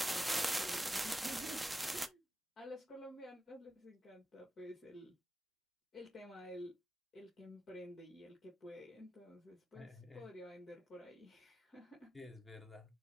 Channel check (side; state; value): both; normal; correlation 0.92